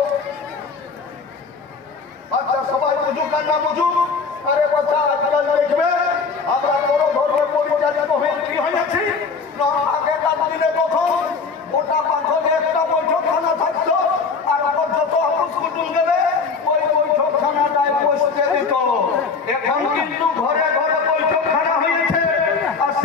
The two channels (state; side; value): quieter; right; 4.9 dB